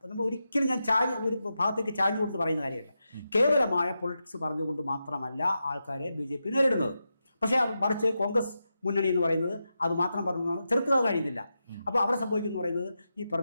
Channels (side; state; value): both; inverted; correlation -0.89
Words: നമ്മൾ ഒരിക്കലും ഞാൻ ഒരു ഭാഗത്തേക്ക് ചാഞ്ഞുകൊണ്ട് പറയുന്ന കാര്യമല്ല. കേവലമായ പൊളിറ്റിക്സ് പറഞ്ഞുകൊണ്ട് മാത്രമല്ല ആൾക്കാരെ BJP നേരിടുന്നത്. പക്ഷേ മറിച്ച് കോൺഗ്രസ് മുന്നണി എന്ന് പറയുന്നത് അത് മാത്രം പറഞ്ഞാണ് ചെറുത്തുക കഴിയുന്നില്ല. അപ്പോൾ അവിടെ സംഭവിക്കുന്നു പറയുന്നത് ഈ